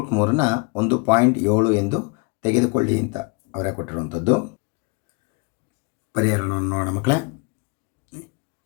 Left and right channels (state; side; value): quieter; right; 29.5 dB